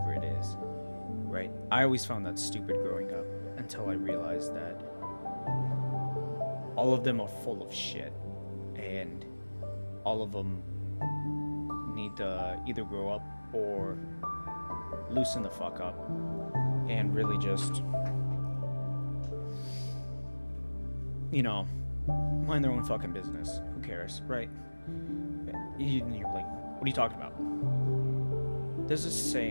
it is, right? I always found that stupid growing up until I realized that all of them are full of shit and all of them need to either grow up or loosen the fuck up and really just, you know, mind their own fucking business. Who cares, right? You're like, what are you talking about? There's this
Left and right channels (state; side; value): inverted; both; correlation -1.00